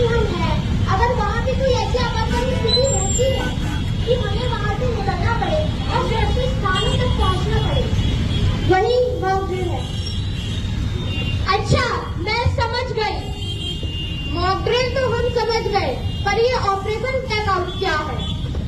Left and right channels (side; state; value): both; identical; correlation 1.00